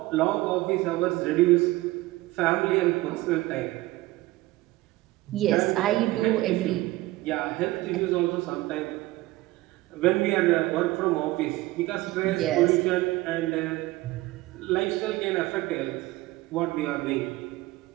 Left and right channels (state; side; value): quieter; left; 18.8 dB